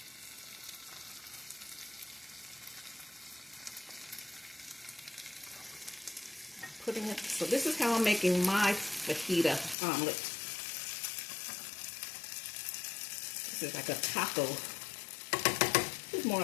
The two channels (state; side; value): drops out; right; at 9.8 s